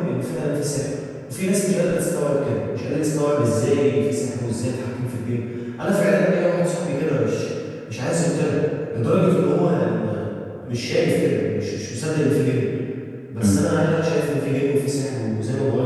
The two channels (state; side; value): identical; both; correlation 1.00